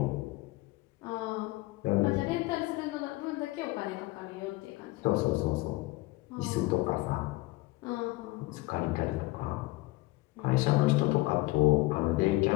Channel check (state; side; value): quieter; right; 20.5 dB